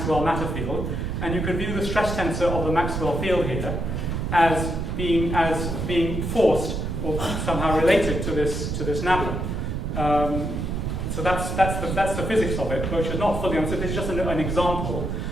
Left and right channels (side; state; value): right; noise; rumble, 2 dB below the sound